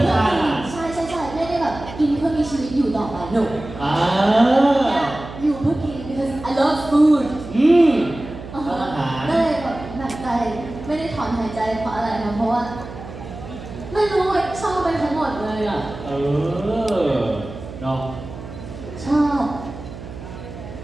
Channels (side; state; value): right; noise; hum, 12 dB below the sound